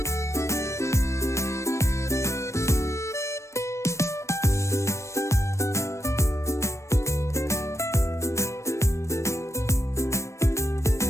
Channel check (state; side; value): late; right; 0.14 ms